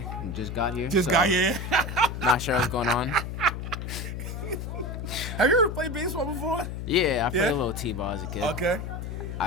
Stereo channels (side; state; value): left; noise; hum, 6 dB below the sound